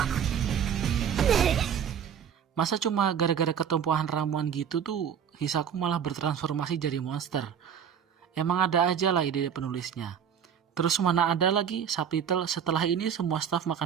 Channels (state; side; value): quieter; left; 8.1 dB